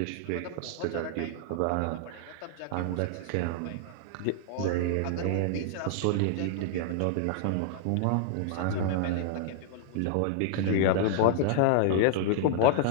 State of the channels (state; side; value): different; both; correlation -0.01